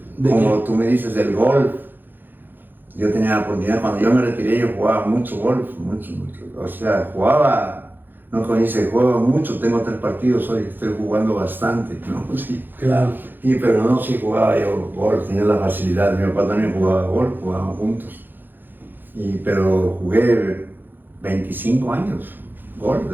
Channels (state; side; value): late; left; 0.092 ms